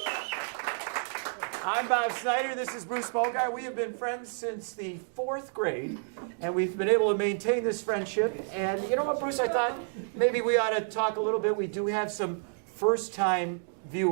I'm Bob Snyder. This is Bruce Bogart. We have been friends since the 4th grade, and we've been able to maintain this friendship. And you know what, Bruce? I thought maybe we ought to talk a little bit. We do have some first-time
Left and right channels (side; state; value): left; silent; digital silence